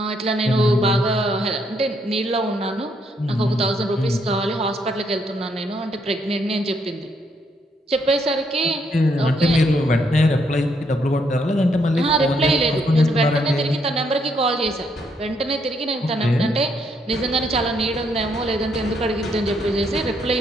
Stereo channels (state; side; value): normal; both; correlation 0.74